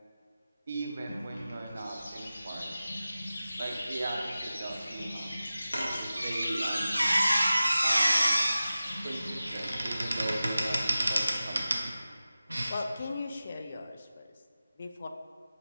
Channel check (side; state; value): both; inverted; correlation -0.94